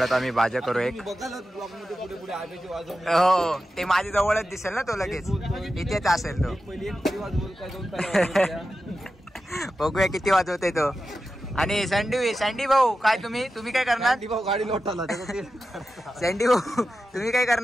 आम्ही भाज्या करू. एक हो ते माझ्या जवळच दिसेल ना तो लगेच इथेच असेल तो. बघूया किती वाजवते तो. आणि सँडी भाऊ काय तुम्ही काय करणार? गाडी लोटाला सँडी भाऊ तुम्ही काय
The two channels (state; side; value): normal; both; correlation 0.92